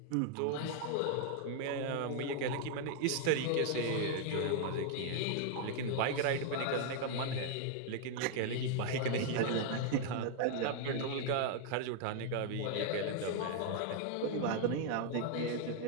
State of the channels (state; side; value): different; both; correlation 0.00